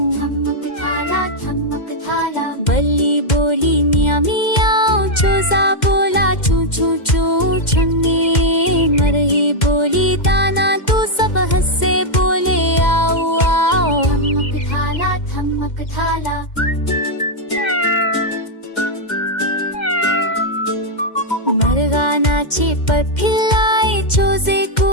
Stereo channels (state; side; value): late; right; 2.1 ms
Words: ठमक थाला बल्ली बोली मियाँ मियाँ, झोजा बोला चू चू चू। छन्नी मरही बोली दाना, तू सब हंसे बोले आओ आओ। ठमक थाला मरगा नाचे पर फिल्लाए, झोजे को